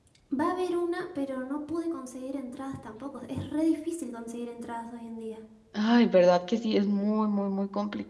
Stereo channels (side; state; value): both; identical; correlation 1.00